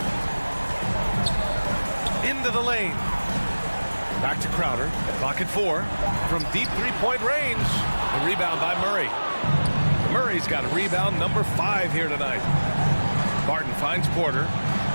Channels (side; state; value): both; inverted; correlation -1.00